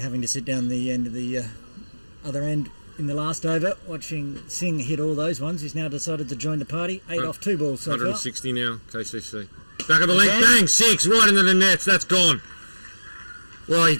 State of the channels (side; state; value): both; inverted; correlation -1.00